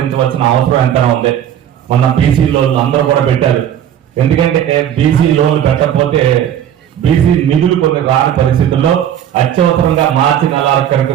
అవసరం ఎంతైనా ఉంది. మొన్న బీసీ లోన్లు అందరూ కూడా పెట్టారు. ఎందుకంటే బీసీ లోన్లు పెట్టకపోతే బీసీ నిధులు కొన్ని రాని పరిస్థితుల్లో అత్యవసరంగా మార్చి 4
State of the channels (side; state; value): left; quieter; 10.2 dB